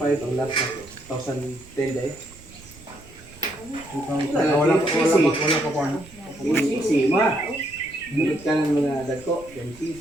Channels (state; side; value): noise; right; rumble, 22 dB below the sound